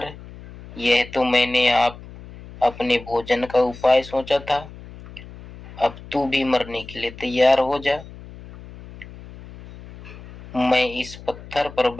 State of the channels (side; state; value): left; noise; hum, 17 dB below the sound